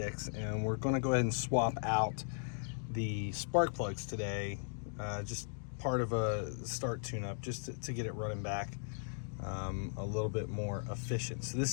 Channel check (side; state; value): right; silent; digital silence